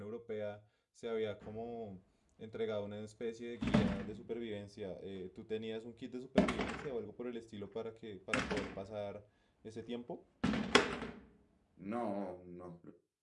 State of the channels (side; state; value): both; identical; correlation 1.00